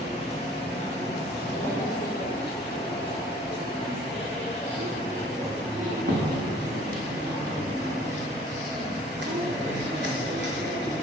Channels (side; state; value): both; normal; correlation 0.54